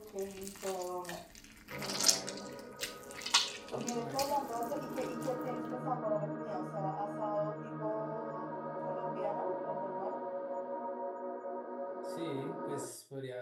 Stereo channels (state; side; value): identical; both; correlation 1.00